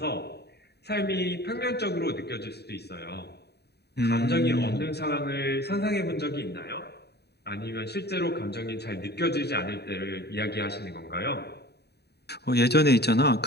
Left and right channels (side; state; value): right; late; 0.48 ms